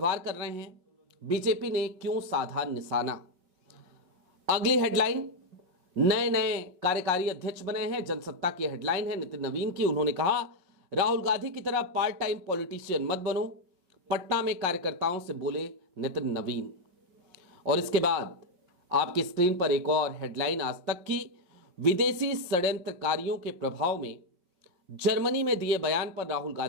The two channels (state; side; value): late; left; 5.5 ms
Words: कर रहे हैं, बीजेपी ने क्यों साधा निशाना। अगली हेडलाइन, नए नए कार्यकारी अध्यक्ष बने हैं। जनसत्ता की हेडलाइन है नितिन नवीन की। उन्होंने कहा, राहुल गांधी की तरह पार्ट टाइम पॉलिटिशियन मत बनो, पटना में कार्यकर्ताओं से बोले नितिन नवीन। और इसके बाद आपकी स्क्रीन पर एक और हेडलाइन आज तक की, विदेशी षड्यंत्रकारियों के प्रभाव में जर्मनी में दिए बयान पर राहुल